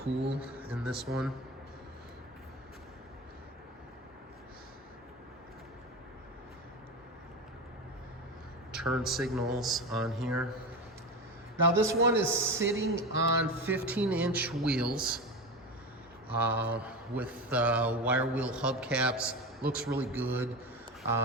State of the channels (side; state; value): both; normal; correlation 0.23